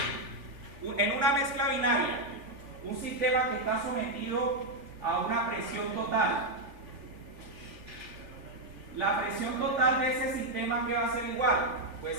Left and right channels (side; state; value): left; late; 3.4 ms